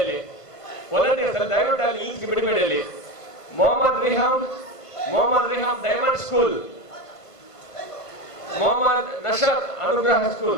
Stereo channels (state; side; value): late; right; 1.5 ms